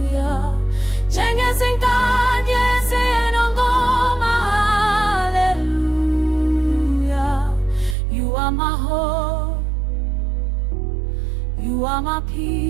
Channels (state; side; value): drops out; left; at 8.0 s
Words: Zinganye zinongoma, hallelujah. You are my hope, you are my